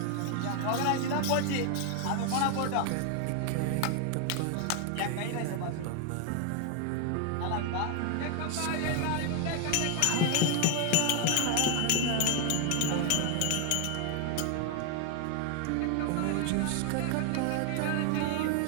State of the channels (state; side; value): different; both; correlation 0.00